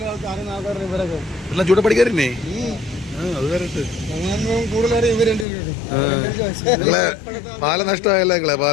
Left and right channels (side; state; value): right; drops out; at 5.5 s